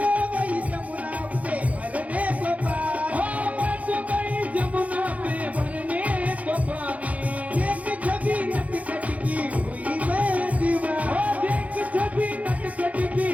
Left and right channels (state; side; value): late; left; 0.069 ms